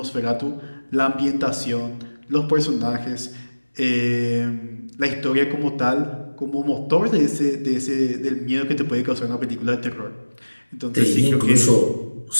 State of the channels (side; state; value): both; inverted; correlation -1.00